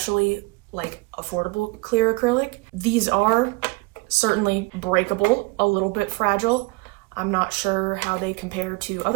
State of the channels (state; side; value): quieter; left; 26.4 dB